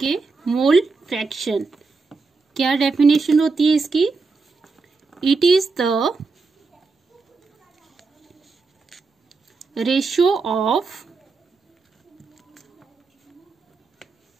मोल फ्रैक्शन। क्या डेफिनेशन होती है इसकी? It is the ratio of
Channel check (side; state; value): left; quieter; 4.2 dB